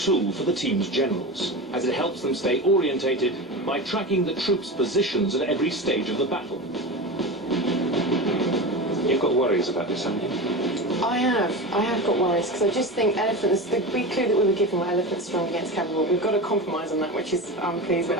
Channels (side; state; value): both; normal; correlation 0.25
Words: for the team's generals, as it helps them stay orientated by tracking the troops' positions at every stage of the battle. You've got worries about this, haven't you? I have got worries, because I just think elephants, the big clue that we were given were elephants strong against cavalry. We've got to compromise on that, which is, I'm pleased with,